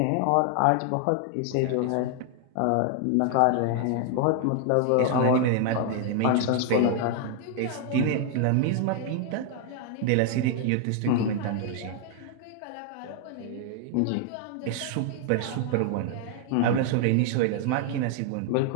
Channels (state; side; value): different; both; correlation 0.00